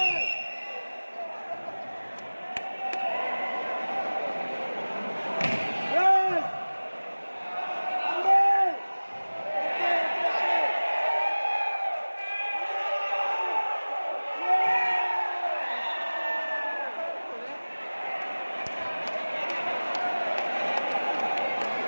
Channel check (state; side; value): inverted; both; correlation -1.00